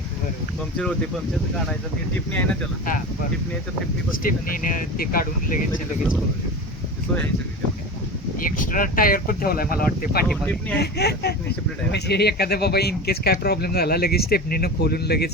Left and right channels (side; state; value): both; normal; correlation 0.29